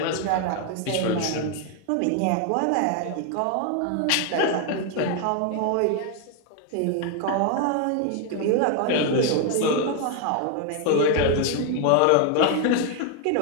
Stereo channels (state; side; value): different; both; correlation 0.00